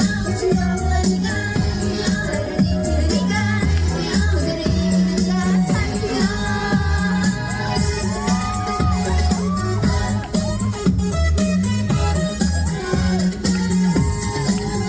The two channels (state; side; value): identical; both; correlation 1.00